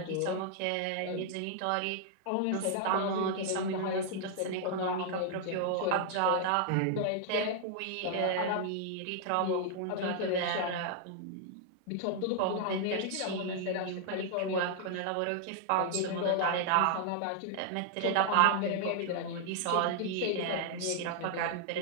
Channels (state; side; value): different; both; correlation 0.00